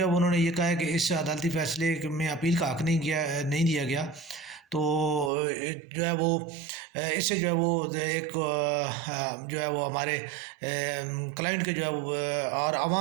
ہے انہوں نے یہ کہا ہے کہ اس عدالتی فیصلے میں اپیل کا حق نہیں دیا گیا۔ تو جو ہے وہ اس سے جو ہے وہ ایک جو ہے وہ ہمارے کلائنٹ کے جو ہے وہ اور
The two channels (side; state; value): left; drops out; at 5.3 s